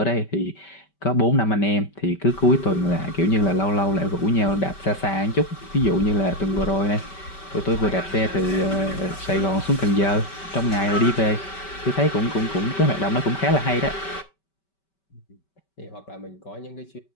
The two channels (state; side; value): late; right; 5.2 ms